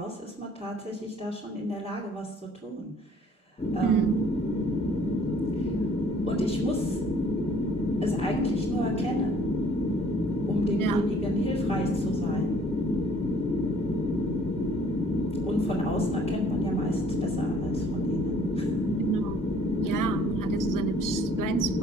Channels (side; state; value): both; normal; correlation 0.58